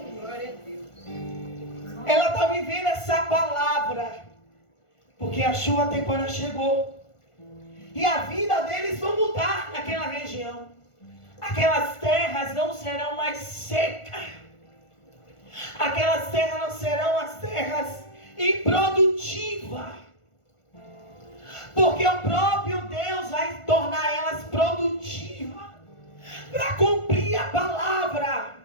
Ela está vivendo essa palavra, porque a chuva temporária chegou. E a vida deles vai mudar naquela região. Aquelas terras não serão mais secas. Aquelas terras não serão as terras improdutivas. Porque o próprio Deus vai tornar elas produtivas. Para cumprir a palavra.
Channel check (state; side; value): late; right; 1.5 ms